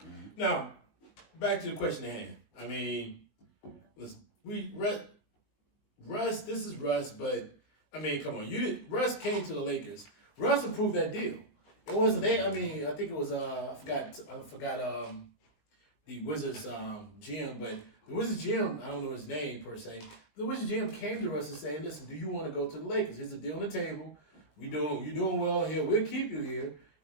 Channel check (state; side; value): late; right; 20 ms